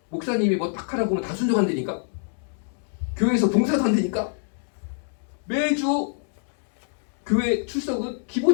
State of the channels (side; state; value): right; silent; digital silence